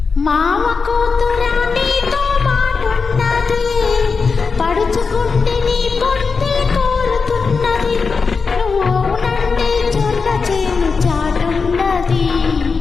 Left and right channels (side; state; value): right; quieter; 4.9 dB